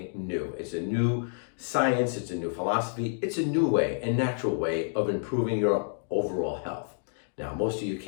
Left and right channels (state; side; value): silent; right; digital silence